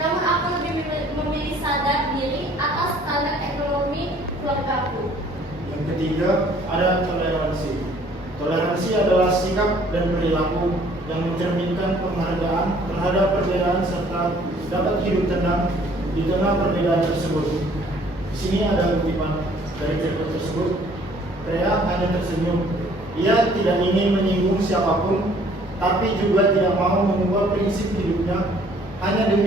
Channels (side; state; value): both; normal; correlation 0.58